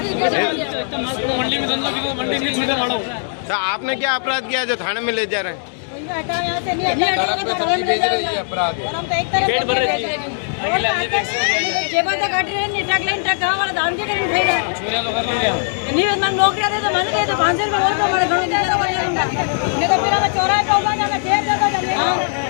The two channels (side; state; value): right; silent; digital silence